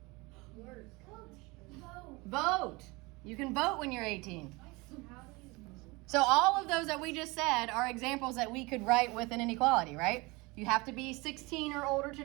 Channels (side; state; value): left; quieter; 24.6 dB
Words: Work. Vote. vote. You can vote when you're 18. How do you So all of those that we just said are examples that we could write with an inequality, right? You have to be 16 or older to